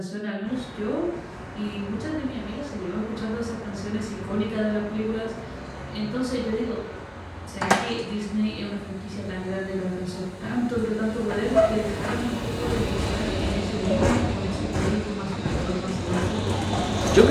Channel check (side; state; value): both; identical; correlation 1.00